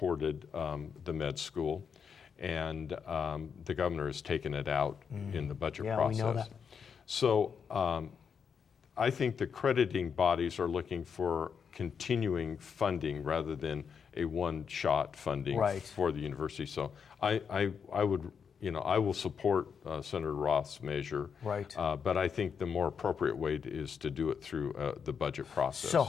the med school, and the governor has taken it out in the budget process. We know that. So I think the crediting bodies are looking for continuing funding rather than a one-shot funding for the university. So I would. I will support Senator Roth's measure, but I think the more appropriate way is to do it through the budget process. So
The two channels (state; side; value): quieter; right; 6.7 dB